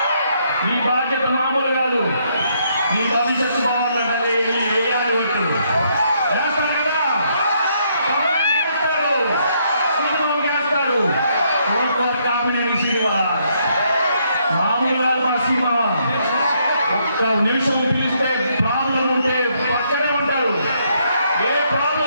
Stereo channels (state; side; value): inverted; both; correlation -0.72